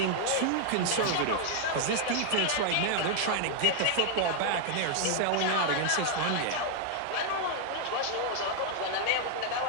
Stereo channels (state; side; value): different; both; correlation 0.00